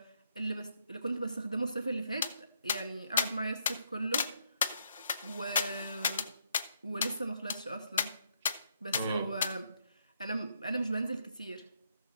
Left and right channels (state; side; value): inverted; both; correlation -0.75